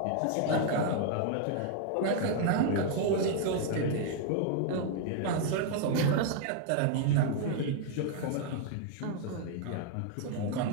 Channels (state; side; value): different; both; correlation 0.00